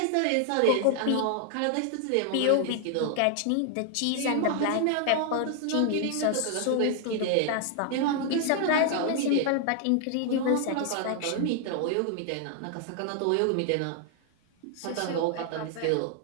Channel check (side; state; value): both; different; correlation 0.00